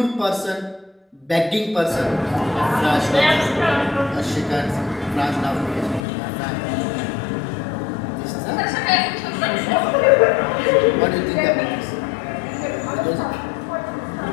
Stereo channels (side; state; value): right; drops out; at 6.0 s